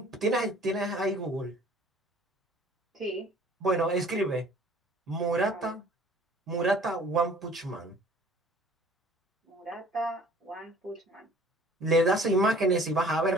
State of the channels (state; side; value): normal; both; correlation 0.52